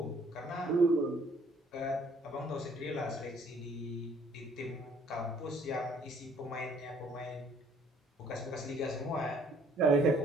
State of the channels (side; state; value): both; normal; correlation 0.61